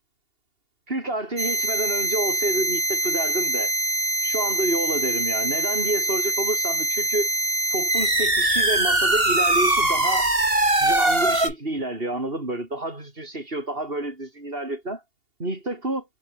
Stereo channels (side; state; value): left; late; 2.8 ms